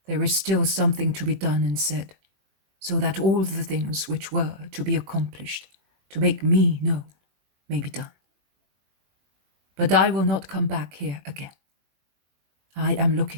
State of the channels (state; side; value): late; left; 21 ms